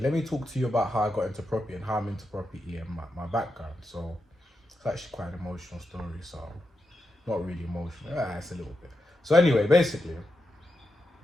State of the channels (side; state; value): both; normal; correlation 0.87